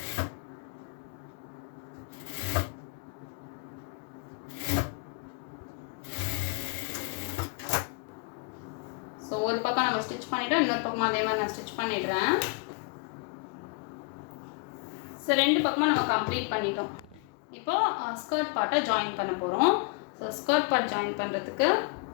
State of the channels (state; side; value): quieter; right; 33.7 dB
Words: ஸோ ஒரு பக்கம் நம்ம ஸ்டிச் பண்ணிவிட்டோம், இன்னொரு பக்கமாக அதே மாதிரி நான் ஸ்டிச் பண்ணிடுறேன். ஸோ ரெண்டு பக்கமாக நம்ம கம்ப்ளீட் பண்ணிட்டோம். இப்போ ஸ்கர்ட் பார்ட்டை ஜாயின் பண்ண போகிறோம். ஸோ ஸ்கர்ட் பார்ட் ஜாயின் பண்ணுறதுக்கு